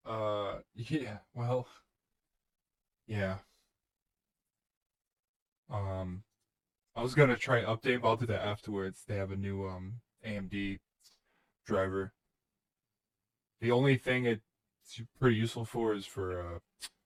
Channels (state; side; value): identical; both; correlation 1.00